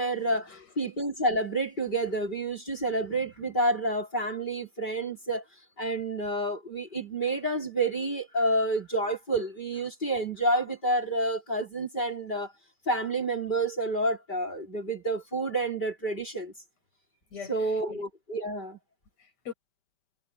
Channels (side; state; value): right; late; 5.1 ms